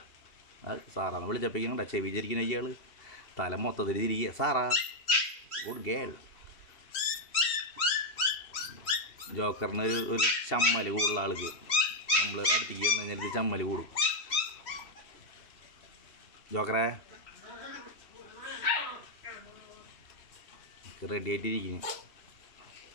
സാറാന്ന് വിളിച്ചപ്പോഴേക്കും ചെവിചരിക്കുന്ന ഇയാൾ തല മൊത്തത്തിൽ തിരികെ. Sarah good girl. ജോക്കറിന് ഒരു ചമ്മൽ കൂടുതലുള്ള ആൾക്ക് നമ്മൾ അടുത്തേക്ക് വന്നു കഴിഞ്ഞാൽ ഇത് ചമ്മൽ കൂടും. ജോക്കറെ റെഡി ആയിട്ടിരിക്കുന്നു.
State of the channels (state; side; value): late; right; 3.1 ms